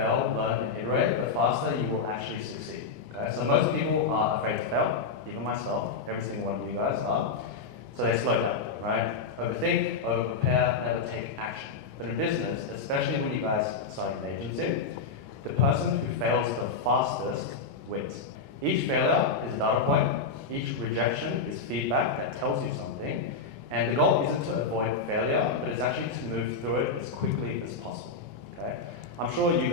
learn, and iterate, the faster you will actually succeed. Okay? So most people are afraid to fail, even myself, every single one of you guys are. So they slow down, right? Overthink, over-prepare, never take action. But in business, especially when you guys are starting an agency, the person who fails the fastest wins. Each failure is a data point, each rejection is feedback that tells you something, and the goal isn't to avoid failure, but it's actually to move through it as quickly as possible, okay? I'm sure you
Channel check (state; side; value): quieter; right; 4.6 dB